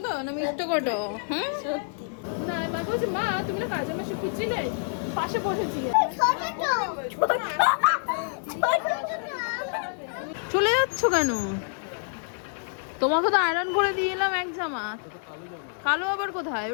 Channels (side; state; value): right; silent; digital silence